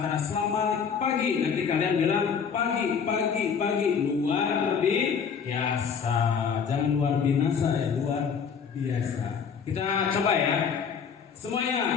selamat pagi, nanti kalian bilang pagi luar biasa. Jangan luar binasa, ya, luar biasa. Kita coba, ya.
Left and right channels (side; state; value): right; quieter; 6.6 dB